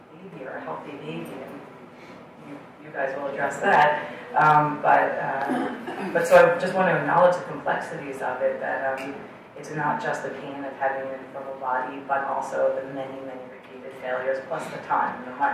baby or a healthy baby. And you guys will address that. But so I just want to acknowledge the complexities of it, that it's not just the pain of having an infertile body, but also the many repeated failures, plus the time, the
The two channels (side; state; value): both; identical; correlation 1.00